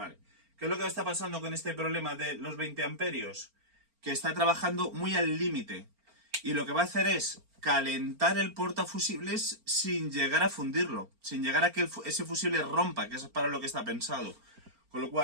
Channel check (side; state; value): left; late; 4.4 ms